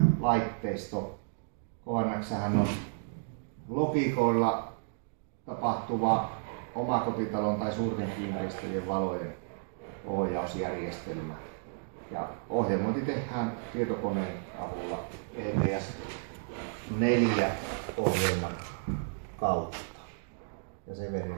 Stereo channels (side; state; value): left; silent; digital silence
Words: KNX:hän on logiikoilla tapahtuva omakotitalon tai suurten kiinteistöjen valojen ohjausjärjestelmä. Ja ohjelmointi tehdään tietokoneen avulla ETS 4 ohjelman kautta. Ja